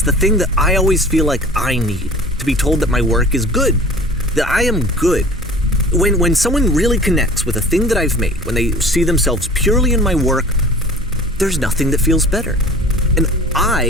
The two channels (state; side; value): normal; both; correlation 0.43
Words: the thing that I always feel like I need, to be told that my work is good, that I am good. When someone really connects with a thing that I've made, when they see themselves purely in my work, there's nothing that feels better. And